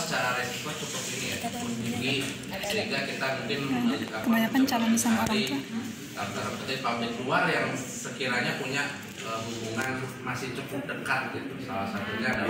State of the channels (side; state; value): both; identical; correlation 1.00